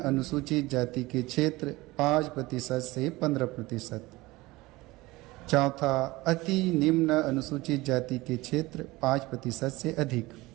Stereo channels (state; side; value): quieter; left; 20.4 dB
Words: जाति के क्षेत्र 5% से 15%। चौथा, अति निम्न अनुसूचित जाति के क्षेत्र 5% से अधिक।